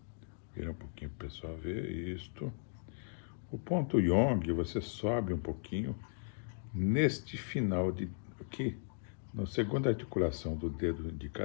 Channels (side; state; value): right; silent; digital silence